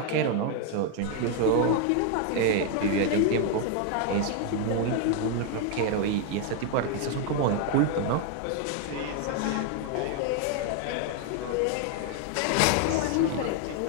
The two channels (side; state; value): both; different; correlation 0.00